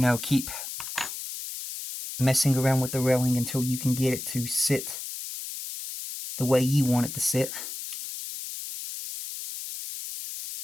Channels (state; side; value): noise; left; hiss, 8 dB below the sound